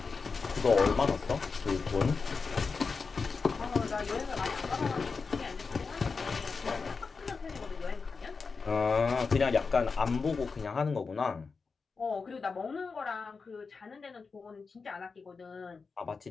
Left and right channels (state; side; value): quieter; right; 4.8 dB